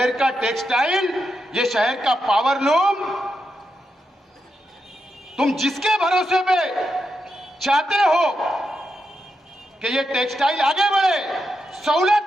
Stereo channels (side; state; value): both; normal; correlation 0.85